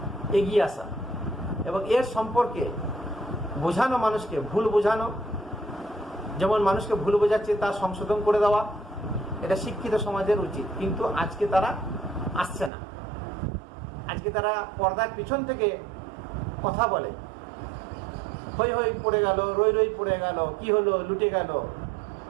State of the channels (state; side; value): drops out; left; at 12.7 s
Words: এগিয়ে আসা এবং এর সম্পর্কে বোঝানো, মানুষকে ভুল বোঝানো। যেমন মানুষকে ভুল বোঝাচ্ছে তা সংশোধন করে দেওয়া, এটা শিক্ষিত সমাজের উচিত। কিন্তু আজকে তারা আসছে না। আজকে তারা পর্দার পিছন থেকে কথা বলে, হই হই পড়ে গেল, রই রই পড়ে গেল, কি হলো, লুটে গেল,